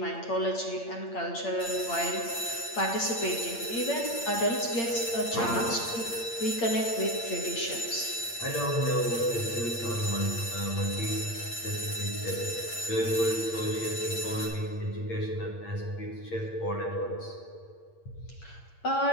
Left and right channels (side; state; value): right; late; 8.7 ms